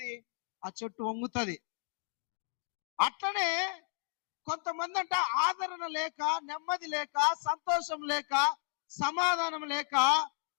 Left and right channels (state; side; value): silent; right; 55 dB below the other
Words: ఆ చెట్టు వంగుతుంది. అట్లనే కొంతమంది అంట ఆదరణ లేక, నెమ్మది లేక, సంతోషం లేక, సమాధానం లేక,